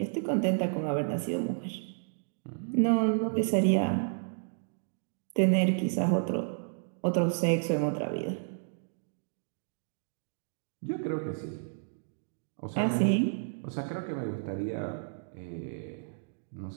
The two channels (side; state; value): left; silent; digital silence